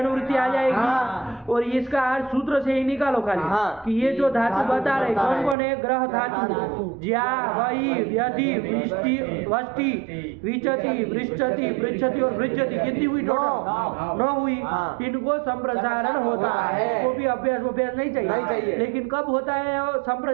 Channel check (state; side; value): drops out; left; at 5.6 s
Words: आ जाएगी। और इसका अर्थ सूत्र से ही निकालो खाली कि ये जो धातु बता रहे कौन कौन है? ग्रह धातु ज्या वही व्यति वष्टि विचति वृश्चति पृच्छति और भृज्यति कितनी हुई? टोटल 9 हुई। इनको संप्रसारण होता है। इसको भी अभ्यास नहीं चाहिए, लेकिन कब होता है